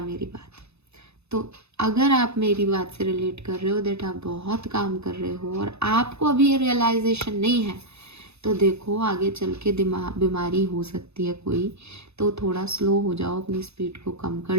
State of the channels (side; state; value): left; late; 0.80 ms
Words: मेरी बात। तो अगर आप मेरी बात से रिलेट कर रहे हो दैट आप बहुत काम कर रहे हो और आपको अभी ये रियलाइजेशन नहीं है, तो देखो आगे चल के बीमारी हो सकती है कोई, तो थोड़ा स्लो हो जाओ, अपनी स्पीड को कम कर